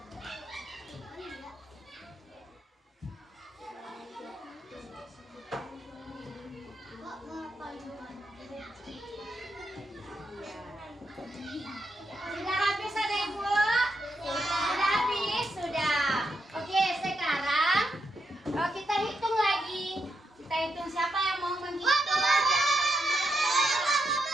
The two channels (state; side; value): normal; both; correlation 0.83